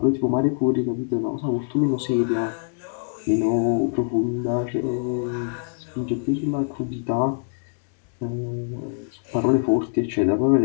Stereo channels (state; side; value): silent; right; digital silence